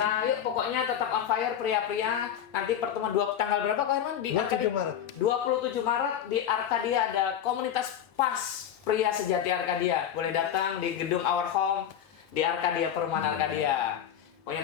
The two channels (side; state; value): right; quieter; 9.7 dB